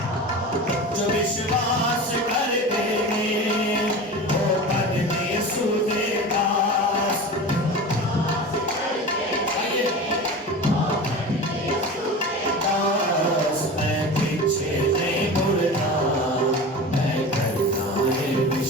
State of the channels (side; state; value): both; normal; correlation 0.31